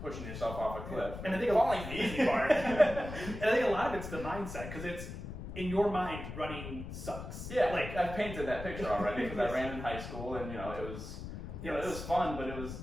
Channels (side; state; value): left; noise; rumble, 9 dB below the sound